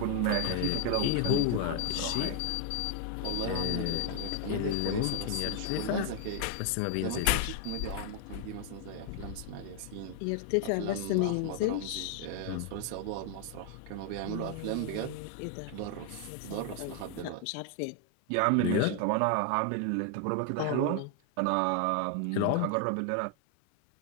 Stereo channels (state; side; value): different; both; correlation 0.00